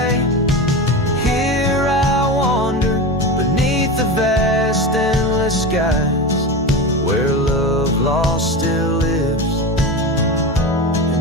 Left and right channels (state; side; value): normal; both; correlation 0.24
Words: Here I wander beneath the vast endless skies, where love lost still lives